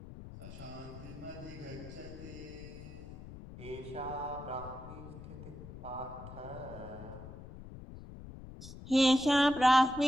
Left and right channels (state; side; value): noise; left; rumble, 13 dB below the sound